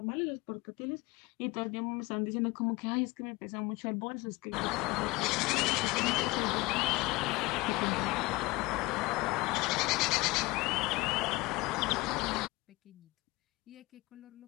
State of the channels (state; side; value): quieter; right; 22.5 dB